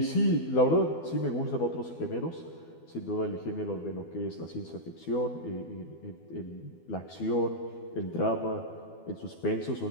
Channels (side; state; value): right; late; 12 ms